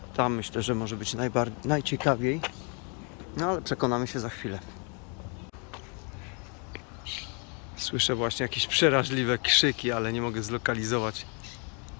Tam myślę, że może być najciekawiej. No ale przekonamy się za chwilę. Słyszę właśnie jakieś przeraźliwe krzyki, ale nie mogę zlokalizować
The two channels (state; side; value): quieter; right; 36.0 dB